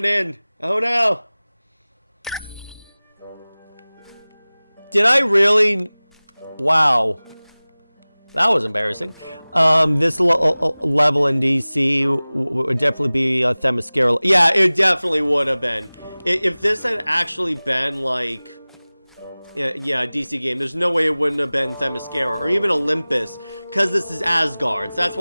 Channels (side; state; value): both; inverted; correlation -0.99